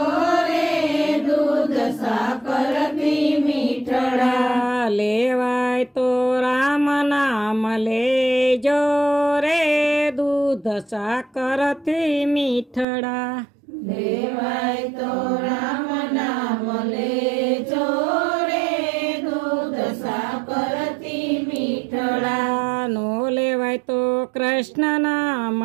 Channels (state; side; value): drops out; left; at 12.9 s